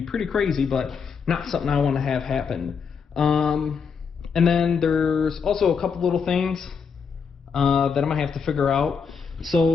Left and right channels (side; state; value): right; quieter; 6.1 dB